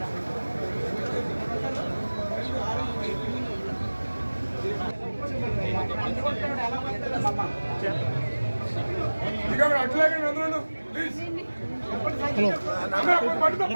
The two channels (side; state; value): both; inverted; correlation -1.00